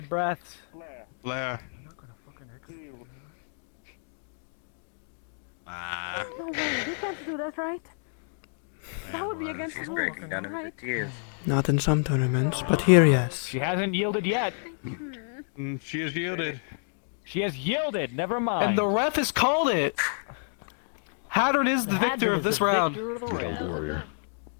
breaths. Blair. No way, they can't do that, right? That would be against the rules, right? Not in some tournaments, but here, yes. She hasn't yielded yet. She has yielded. She has yielded. Never mind. And the ref has called it. Hadron is the victor of this round.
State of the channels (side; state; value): right; silent; 59 dB below the other